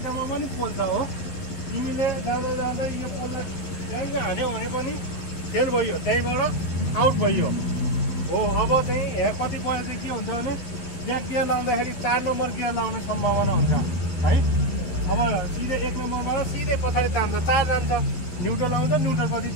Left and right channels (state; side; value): late; right; 12 ms